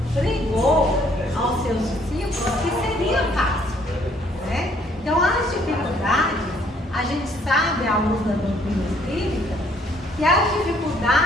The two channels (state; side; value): normal; both; correlation 0.64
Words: pregou aos seus discípulos que seria fácil. Né? Então as dificuldades, a gente sabe à luz da doutrina espírita, que as